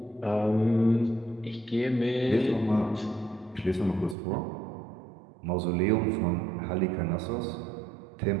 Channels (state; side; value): drops out; left; at 4.2 s